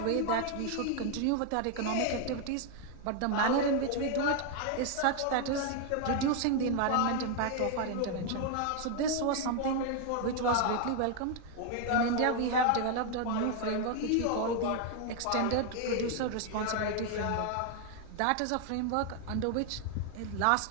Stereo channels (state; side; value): different; both; correlation 0.00